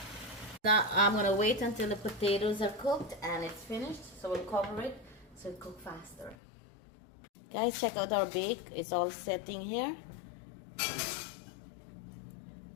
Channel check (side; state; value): right; drops out; at 6.4 s